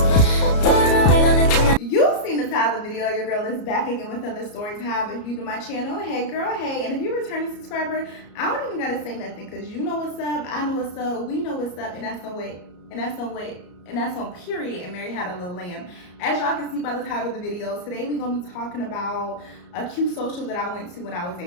You've seen the title of the video. Your girl is back again with another story time. If you to my channel, hey girl, hey. And if you're a returning subscriber, I don't even gotta say nothing because you know what's up, I know what's up, we know what's up, and that's on weight, and that's on weight, and that's on period. And Mary had a little lamb. As y'all can see by the title of the video, today we're gonna be talking about a cute social that I went to when I was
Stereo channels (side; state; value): right; late; 34 ms